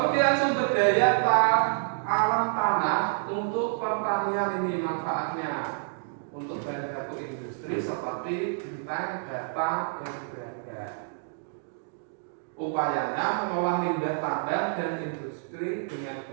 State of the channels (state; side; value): silent; left; digital silence